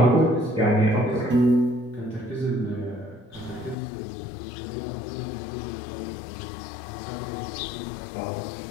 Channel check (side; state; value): right; drops out; at 3.8 s